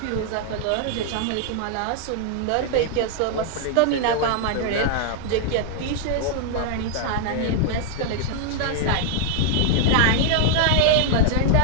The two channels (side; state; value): both; different; correlation -0.01